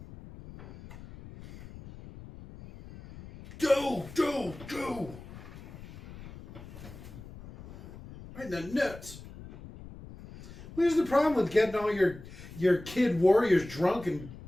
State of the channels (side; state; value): left; noise; rumble, 16 dB below the sound